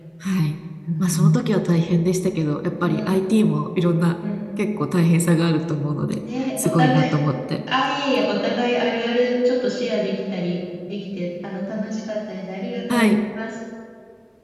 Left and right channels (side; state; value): both; identical; correlation 1.00